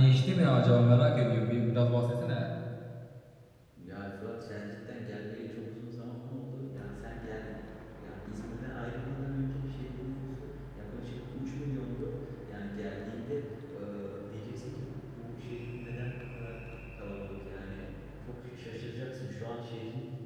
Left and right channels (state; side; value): identical; both; correlation 1.00